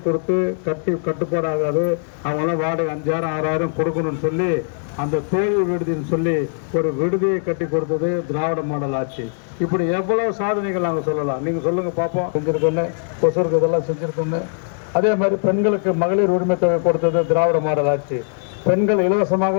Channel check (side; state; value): right; silent; digital silence